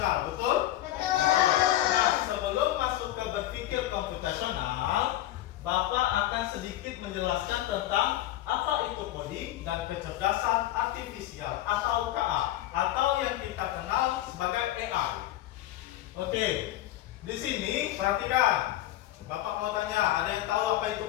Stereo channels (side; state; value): right; quieter; 14.3 dB